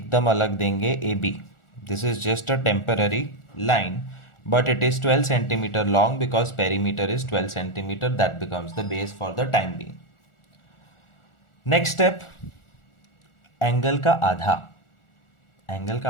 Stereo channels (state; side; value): late; right; 1.4 ms